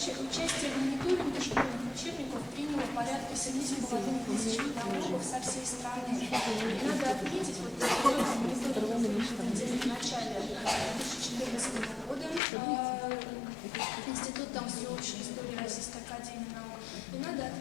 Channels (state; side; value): drops out; right; at 12.4 s